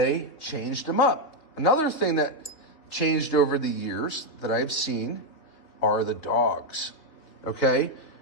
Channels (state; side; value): late; right; 3.5 ms